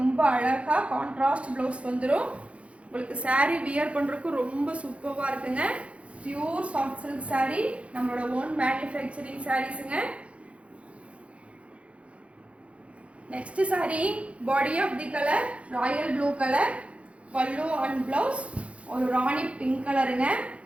அழகாக கான்ட்ராஸ்ட் ப்ளவுஸ் வந்துடும். உங்களுக்கு saree வியர் பண்ணுறதுக்கு ரொம்ப சூப்பராக இருக்குங்க. பியூர் சாஃப்ட் சில்க் saree நம்மளோட ஓன் மேனுஃபேக்சரிங் சாரீஸுங்க. Next saree body of the colour royal blue colour. Pallu and blouse ஒரு ராணி பிங்க் கலருங்க.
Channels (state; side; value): late; left; 0.062 ms